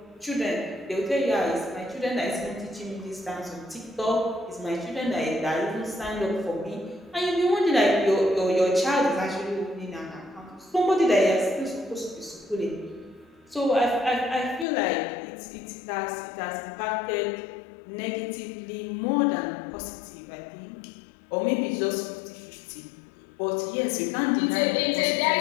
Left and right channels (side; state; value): right; drops out; at 14.7 s